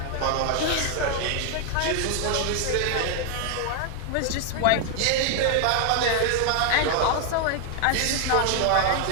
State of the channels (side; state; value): both; different; correlation 0.00